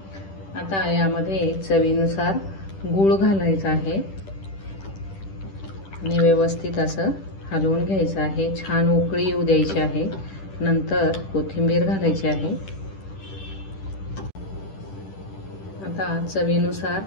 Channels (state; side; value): late; right; 10 ms